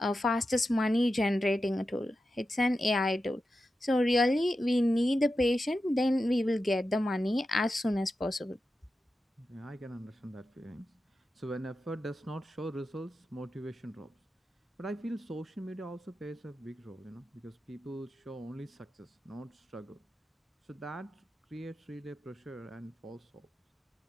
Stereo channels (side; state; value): both; normal; correlation 0.91